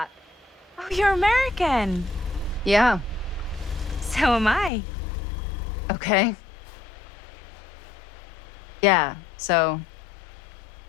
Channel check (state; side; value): drops out; right; at 4.7 s